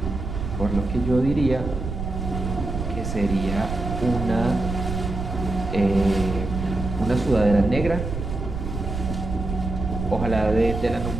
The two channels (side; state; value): right; noise; rumble, 5 dB below the sound